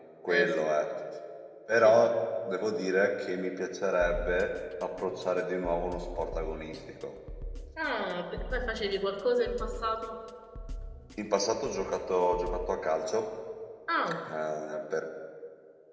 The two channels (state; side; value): identical; both; correlation 1.00